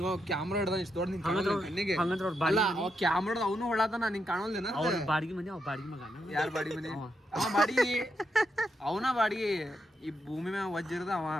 ಕ್ಯಾಮ್ರಾ ಹಿಡ್ದ ಇಷ್ಟು ದೊಡ್ಡ ಹಂಗಂದ್ರೆ ಅವ್ರ ಅಲ್ಲ ಅವ ಕ್ಯಾಮ್ರಾದ ಅವನು ಹೊಳತಾನ ನಿಂಗೆ ಕಾಣೋಲ್ದೇನ ಅವ್ರ ಬಾಡಿಗೆ ಮನೆ ಅವ್ ಬಾಡಿಗೆ ಮಗ ಯಾರ ಬಾಡಿ ಮನೆ ಅವ ಬಾಡಿಗೆ ಅವನ ಬಾಡಿಗೆ ಈ ಭೂಮಿ ಮ್ಯಾಗ ವಜ್ಜಿರದ ಅವ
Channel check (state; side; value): normal; both; correlation 0.82